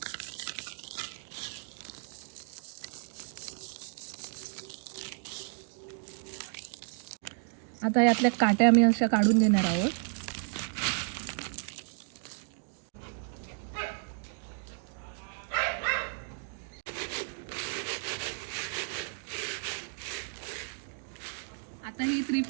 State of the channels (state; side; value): silent; left; 56 dB below the other